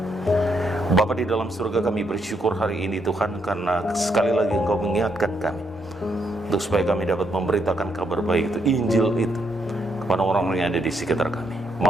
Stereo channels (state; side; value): normal; both; correlation 0.76